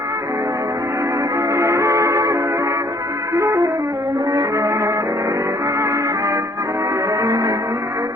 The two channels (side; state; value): both; normal; correlation 0.60